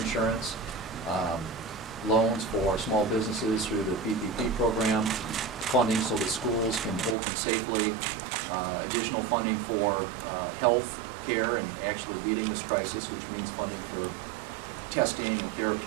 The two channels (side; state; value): left; drops out; at 7.2 s